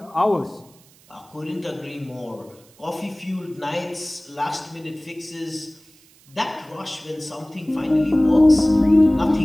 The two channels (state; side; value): noise; right; hiss, 28 dB below the sound